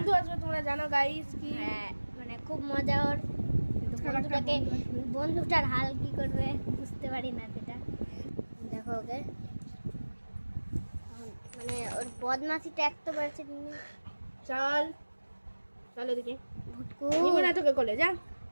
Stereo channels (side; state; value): both; inverted; correlation -1.00